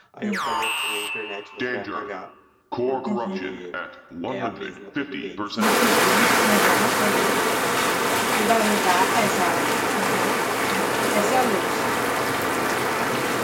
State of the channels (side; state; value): both; identical; correlation 1.00